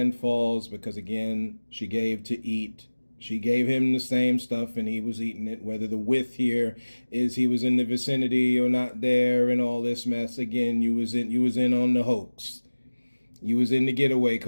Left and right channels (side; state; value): both; inverted; correlation -1.00